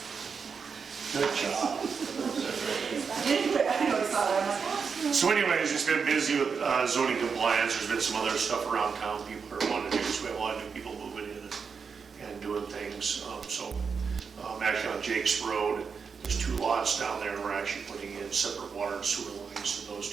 Good job. I know, I saw that. So anyways, it's been busy with zoning compliance. There's been some other stuff around town people are wanting to do. So we have a lot of new people moving in and doing things. Actually on Jake's Road, there's 2 lots down there. We're actually putting in separate water and sewer lines in those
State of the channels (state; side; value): quieter; left; 5.8 dB